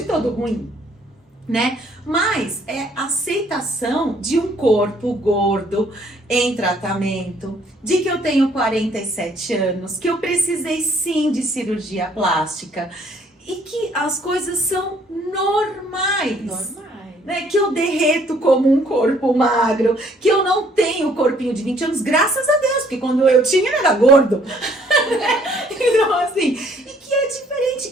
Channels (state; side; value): normal; both; correlation 0.62